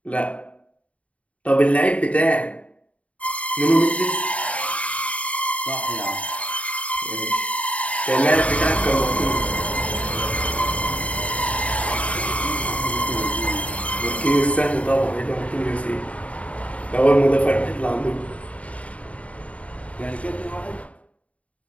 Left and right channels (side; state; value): right; late; 0.066 ms